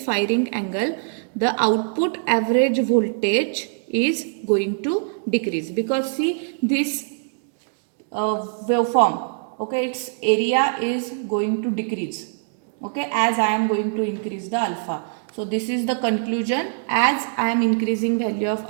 angle, the output average voltage is going to decrease, because see this waveform, okay, its area is going to decrease, okay, as I am going to increase the alpha. So this is the conclusion, as I am increasing value of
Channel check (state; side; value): silent; left; digital silence